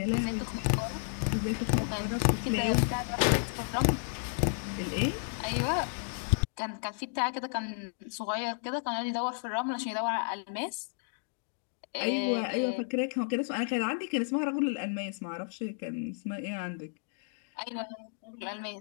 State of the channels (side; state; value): right; silent; digital silence